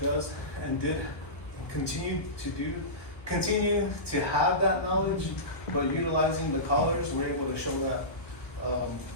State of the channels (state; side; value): late; right; 1.3 ms